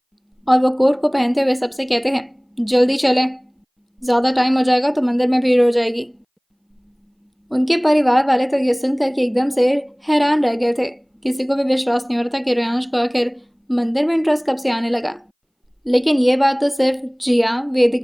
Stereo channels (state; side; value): identical; both; correlation 1.00